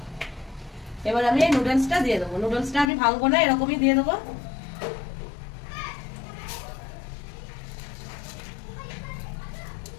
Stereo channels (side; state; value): right; drops out; at 2.9 s